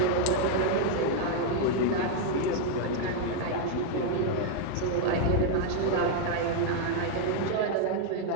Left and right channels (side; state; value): both; different; correlation 0.00